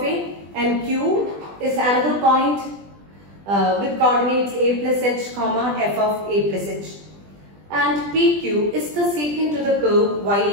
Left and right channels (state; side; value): late; left; 20 ms